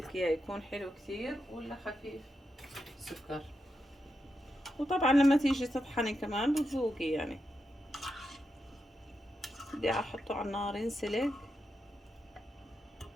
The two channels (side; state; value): both; normal; correlation 0.86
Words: اياه، يكون حلو كثير ولا خفيف سكر. وطبعا لما تيجي تطحني كمان بتذوقي يعني. بدي احطه على النار ينسلق.